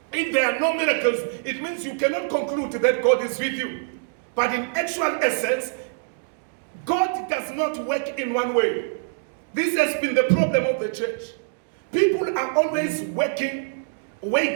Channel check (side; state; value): left; silent; digital silence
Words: it means you cannot conclude that God is with you. But in actual essence, God does not work in one way. This has been the problem of the church. People are always waiting